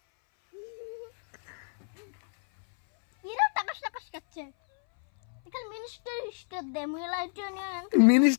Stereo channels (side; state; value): right; silent; 58 dB below the other